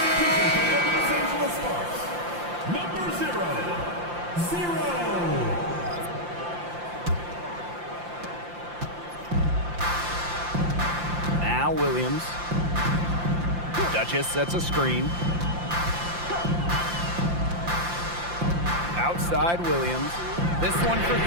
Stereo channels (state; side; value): late; left; 5.8 ms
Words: Number 0. Now Williams. Duchess sets a screen. Outside Williams. This one for